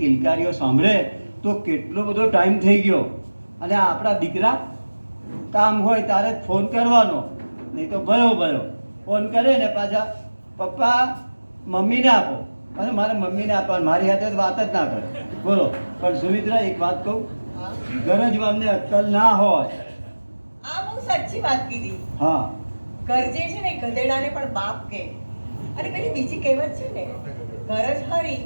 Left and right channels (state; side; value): inverted; both; correlation -1.00